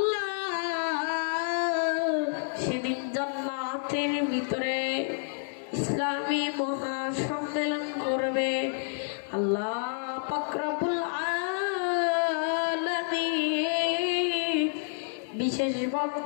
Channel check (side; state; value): right; silent; 59 dB below the other